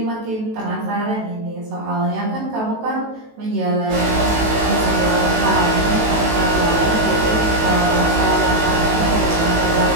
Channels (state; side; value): late; left; 18 ms